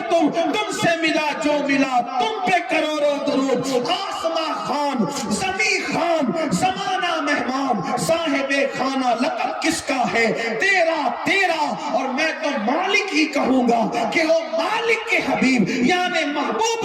تم سے ملا جو ملا تم پہ کروڑوں درود. آسماں خان، زمین خان، زمانہ مہمان، صاحب خانہ لقب کس کا ہے؟ تیرا. اور میں تو مالک ہی کہوں گا کہ وہ مالک کے حبیب یعنی محبوب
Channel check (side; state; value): both; identical; correlation 1.00